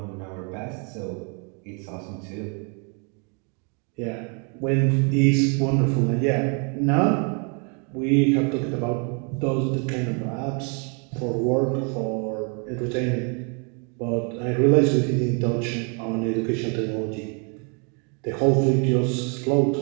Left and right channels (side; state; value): left; quieter; 36.9 dB